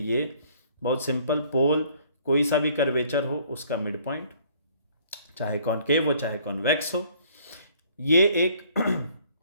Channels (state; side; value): inverted; both; correlation -0.59